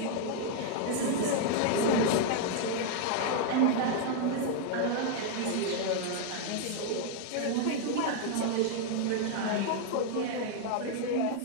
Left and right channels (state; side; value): different; both; correlation 0.00